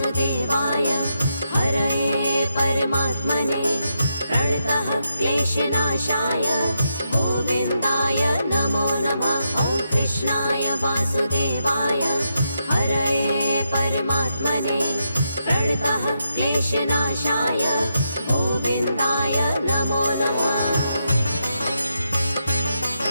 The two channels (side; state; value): both; inverted; correlation -0.83